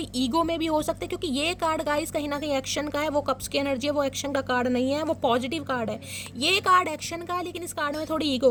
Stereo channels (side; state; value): both; identical; correlation 1.00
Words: ईगो में भी हो सकते हैं, क्योंकि ये कार्ड गाइस कहीं ना कहीं एक्शन का है। वो कप्स की एनर्जी है, वो एक्शन का कार्ड नहीं है, वो पॉजिटिव कार्ड है। ये कार्ड एक्शन का है, लेकिन इस कार्ड में थोड़ी